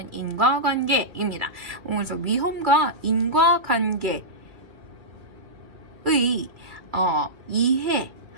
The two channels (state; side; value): late; left; 2.4 ms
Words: 인과관계입니다. 그래서 위험과 인과관계의